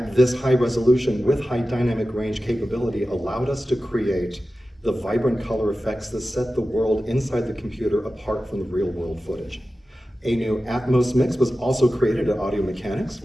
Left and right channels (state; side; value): normal; both; correlation 0.94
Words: this high resolution with high dynamic range capability allowed us to create the vibrant color effects that set the world inside the computer apart from the real world footage. A new Atmos mix was also created at Audio Mechanics